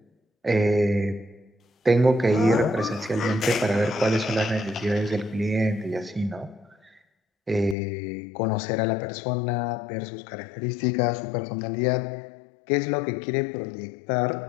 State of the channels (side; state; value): right; drops out; at 7.8 s